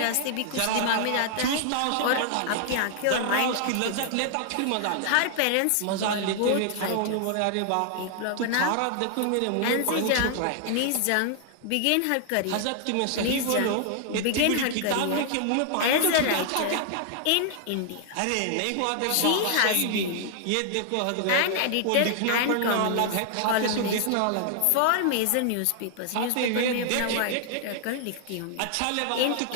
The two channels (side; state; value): both; different; correlation 0.00